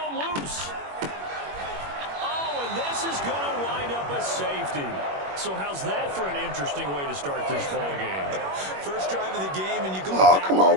loose. Oh, and this is going to wind up a safety. So how's that for an interesting way to start this ball game? First drive of the game, and you go. Oh, come on,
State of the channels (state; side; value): late; left; 21 ms